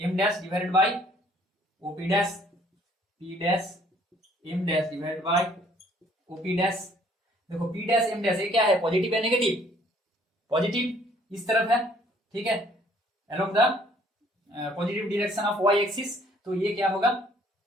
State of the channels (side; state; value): both; normal; correlation 0.60